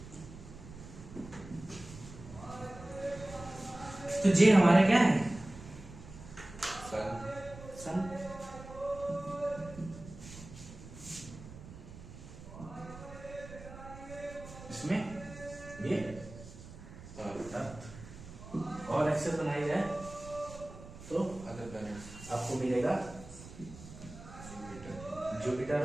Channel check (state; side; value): noise; right; rumble, 15 dB below the sound